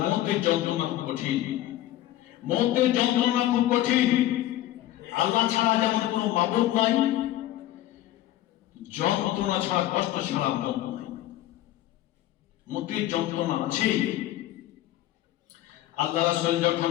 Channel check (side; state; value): right; quieter; 14.2 dB